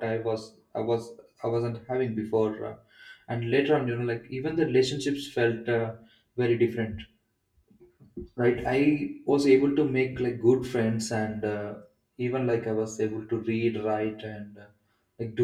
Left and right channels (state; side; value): identical; both; correlation 1.00